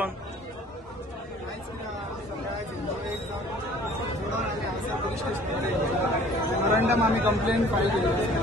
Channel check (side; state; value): both; normal; correlation 0.52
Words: मेमोरंडम आम्ही कंप्लेंट फायल केली.